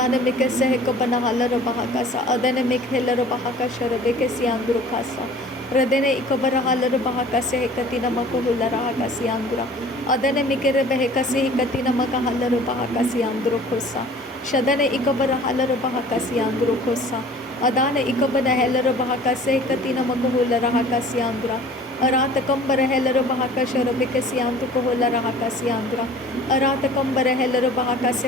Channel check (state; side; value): normal; both; correlation 0.47